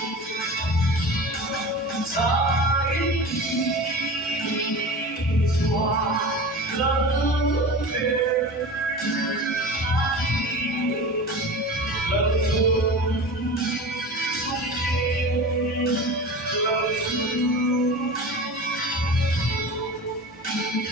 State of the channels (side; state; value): both; normal; correlation 0.32